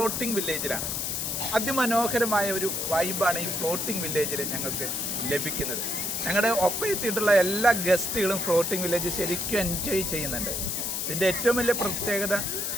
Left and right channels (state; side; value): noise; left; hiss, 1 dB below the sound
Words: വില്ലേജിലാണ്. അതിമനോഹരമായ ഒരു വൈബാണ് ഈ ഫ്ലോട്ടിംഗ് വില്ലേജിൽ ഞങ്ങൾക്ക് ലഭിക്കുന്നത്. ഞങ്ങളുടെ ഒപ്പം എത്തിയിട്ടുള്ള എല്ലാ ഗസ്റ്റുകളും ഫ്ലോട്ടിംഗ് വില്ലേജ് ശരിക്കും എൻജോയ് ചെയ്യുന്നുണ്ട്. ഇതിൻ്റെ ഏറ്റവും വലിയ പ്രത്യേകത